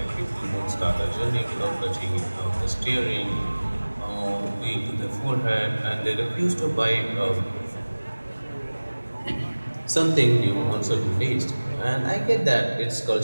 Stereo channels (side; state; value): both; inverted; correlation -1.00